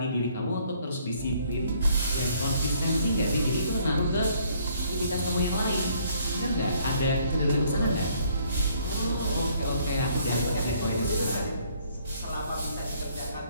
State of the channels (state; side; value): inverted; both; correlation -0.63